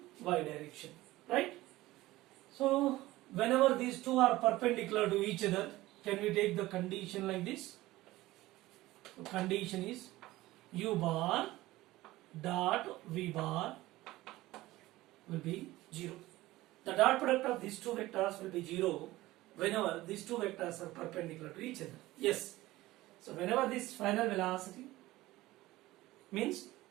y direction, right? So whenever these two are perpendicular to each other, can we take the condition like this? So condition is u bar dot v bar will be 0. The dot product of these two vectors will be 0 whenever these two vectors are perpendicular to each other. Yes. So whenever this final velocity means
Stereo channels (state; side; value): quieter; left; 17.7 dB